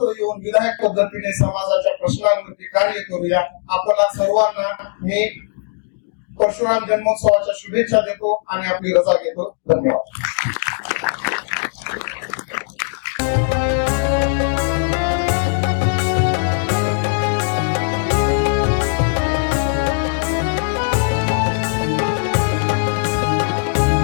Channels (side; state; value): right; silent; digital silence